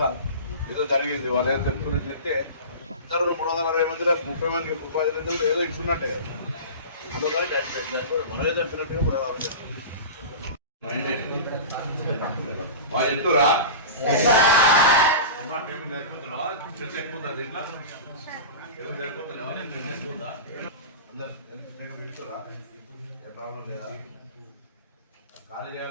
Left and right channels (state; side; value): inverted; both; correlation -0.31